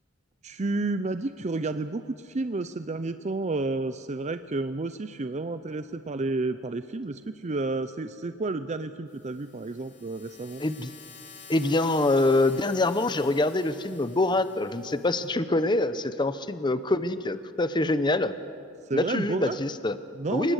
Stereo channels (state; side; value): normal; both; correlation 0.55